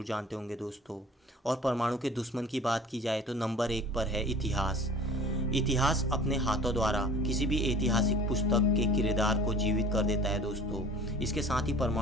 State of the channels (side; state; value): both; normal; correlation 0.46